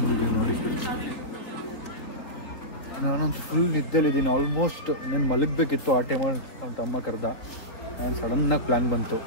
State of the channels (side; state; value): right; late; 4.1 ms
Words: ನೋಡಿ. ನಾನಂತೂ ಫುಲ್ ನಿದ್ದೆಲಿದ್ದೀನಿ ಆಲ್ಮೋಸ್ಟ್. నేను ಮಲಗಬೇಕಿತ್ತು ಆ ಟೈಮಲ್ಲಿ. ನಮ್ಮ ತಮ್ಮ ಕರೆದ, ನಾನು ಸಡನ್ನಾಗಿ ಪ್ಲ್ಯಾನ್ ಬಂತು,